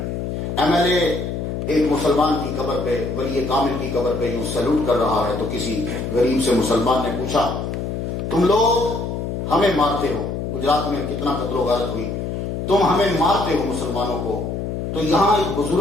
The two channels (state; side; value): noise; left; hum, 4 dB below the sound